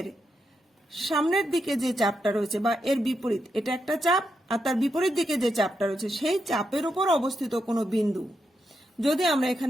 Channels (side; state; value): both; normal; correlation 0.84